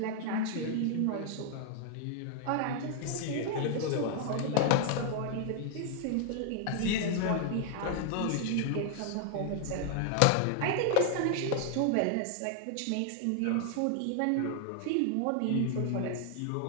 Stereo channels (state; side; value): different; both; correlation 0.00